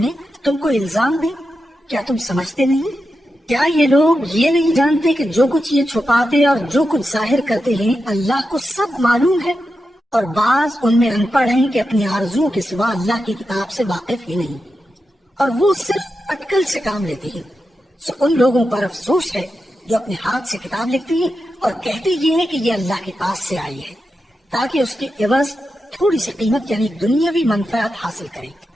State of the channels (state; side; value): normal; both; correlation 0.89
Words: تم کو الزام دیں۔ کیا تم سمجھتے نہیں؟ کیا یہ لوگ یہ نہیں جانتے کہ جو کچھ یہ چھپاتے اور جو کچھ ظاہر کرتے ہیں اللہ کو سب معلوم ہے؟ اور بعض ان میں ان پڑھ ہیں کہ اپنی آرزوؤں کے سوا اللہ کی کتاب سے واقف ہی نہیں، اور وہ صرف اٹکل سے کام لیتے ہیں۔ سو ان لوگوں پر افسوس ہے جو اپنے ہاتھ سے کتاب لکھتے ہیں اور کہتے یہ ہیں کہ یہ اللہ کے پاس سے آئی ہے تاکہ اس کے عوض تھوڑی سی قیمت یعنی دنیاوی منفعت حاصل کریں۔